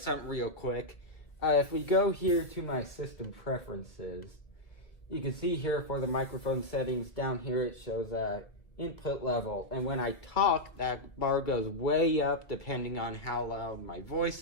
something real quick. If we go here to my system preferences, you can see here for the microphone settings, down here it shows input level. And when I talk, that bar goes way up depending on how loud my voice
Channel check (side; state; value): right; late; 1.8 ms